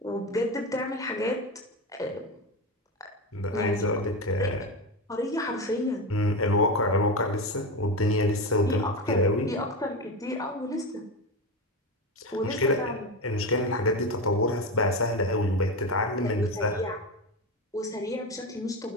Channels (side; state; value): both; normal; correlation 0.18